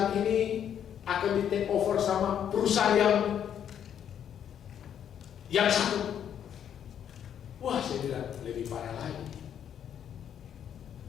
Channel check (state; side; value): quieter; right; 9.1 dB